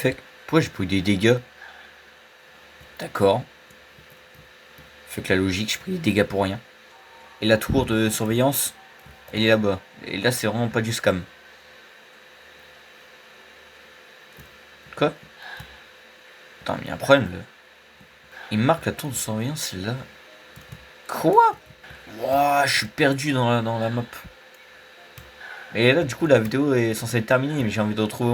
Pourquoi j'ai pris des dégâts? D'accord. Fait que la logique, j'ai pris des dégâts pour rien. Et la tour de surveillance, elle est là-bas. Et là, c'est vraiment pas du scam. Quoi? Attends, mais il y a un problème là. Il me marque la tour de surveillance, c'est là. Quoi? Wouah, je suis perdu dans la map. Et là, du coup, la vidéo est censée être terminée, mais j'ai envie de retrouver au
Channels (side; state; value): both; identical; correlation 1.00